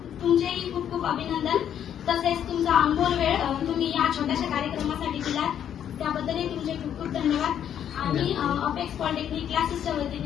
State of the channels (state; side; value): quieter; right; 9.6 dB